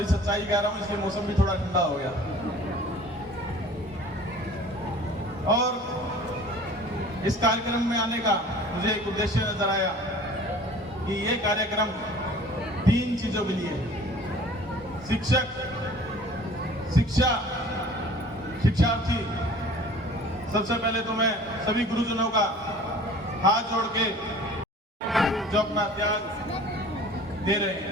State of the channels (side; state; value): both; normal; correlation 0.47